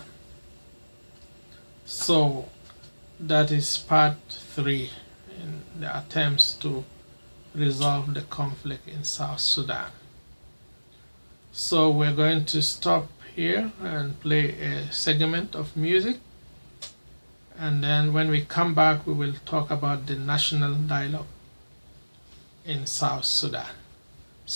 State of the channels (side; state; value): both; inverted; correlation -1.00